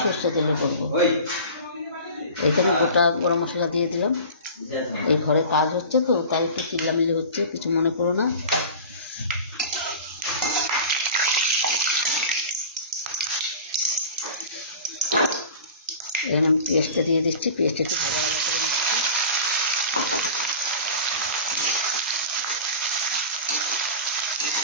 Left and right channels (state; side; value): inverted; both; correlation -0.36